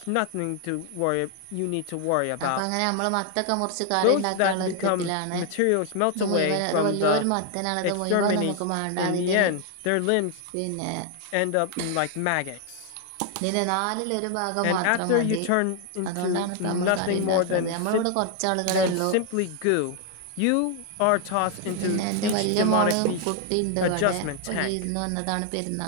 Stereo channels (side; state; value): both; different; correlation 0.00